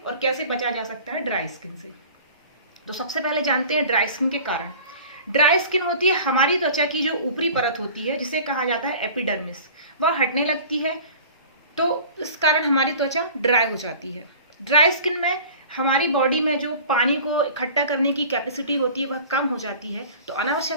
और कैसे बचा जा सकता है ड्राई स्किन से। तो सबसे पहले जानते हैं ड्राई स्किन के कारण। ड्राई स्किन होती है हमारी त्वचा की जो ऊपरी परत होती है, जिसे कहा जाता है एपिडर्मिस, वह हटने लगती है। तो इस कारण हमारी त्वचा ड्राई हो जाती है। ड्राई स्किन में हमारी बॉडी में जो पानी को इकट्ठा करने की कैपेसिटी होती है वह कम हो जाती है, तो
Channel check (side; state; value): both; inverted; correlation -0.43